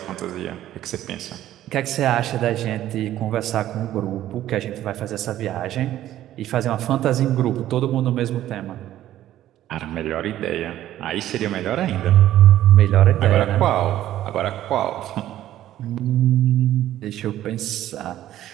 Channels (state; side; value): quieter; left; 13.0 dB